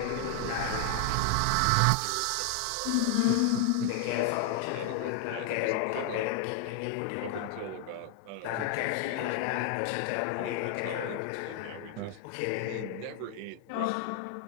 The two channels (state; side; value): different; both; correlation 0.00